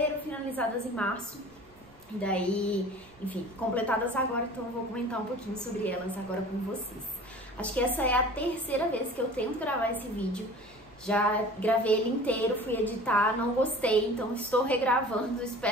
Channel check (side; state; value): right; noise; rumble, 28 dB below the sound